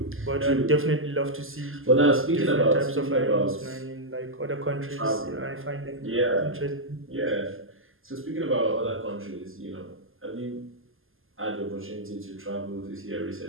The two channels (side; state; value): left; late; 0.59 ms